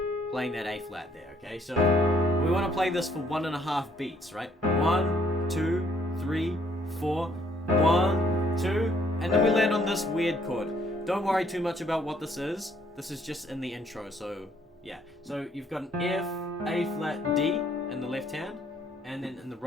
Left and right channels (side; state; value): both; normal; correlation 0.66